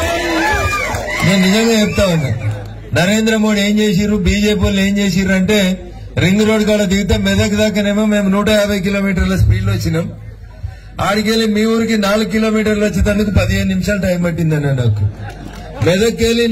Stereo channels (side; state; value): both; identical; correlation 1.00